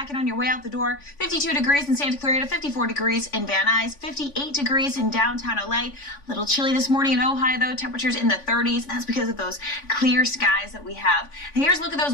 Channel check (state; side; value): late; right; 3.5 ms